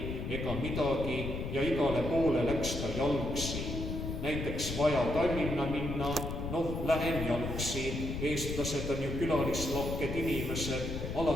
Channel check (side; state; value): left; noise; rumble, 4 dB below the sound